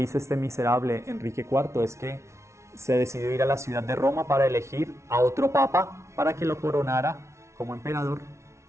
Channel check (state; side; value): late; left; 0.13 ms